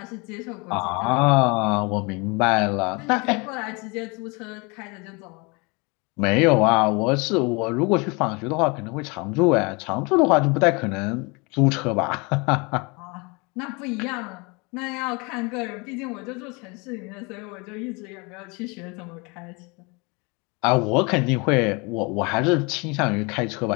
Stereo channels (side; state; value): right; quieter; 28.9 dB